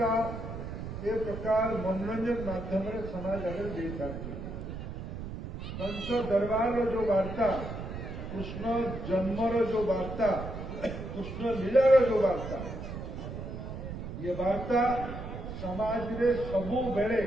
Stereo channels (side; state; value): right; noise; rumble, 8 dB below the sound